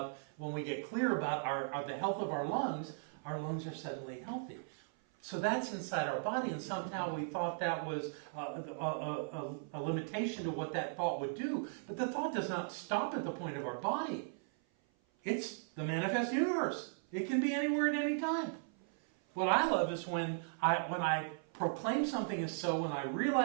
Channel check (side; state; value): left; silent; 53 dB below the other